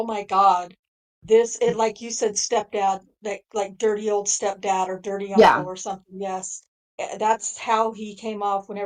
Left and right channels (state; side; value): identical; both; correlation 1.00